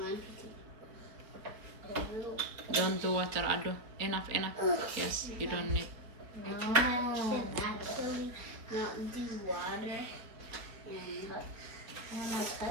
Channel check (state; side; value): late; left; 4.8 ms